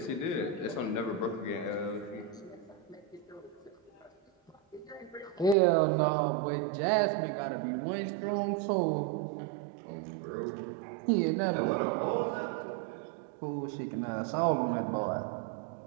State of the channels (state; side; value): drops out; left; at 5.6 s